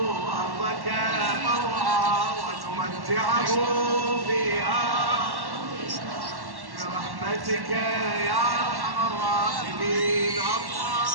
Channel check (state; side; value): late; left; 1.1 ms